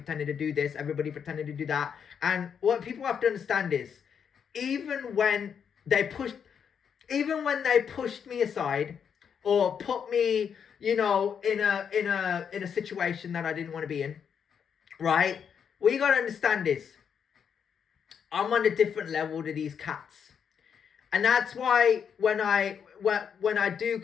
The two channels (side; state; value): right; quieter; 7.4 dB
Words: to do this. Everybody pretended to do that. And what people have to understand is, even when they pushed me aside, or put me, you know, in a situation that I didn't want to be in, right? What you gotta understand is, I'm on a different level to these cats. And that's why when I do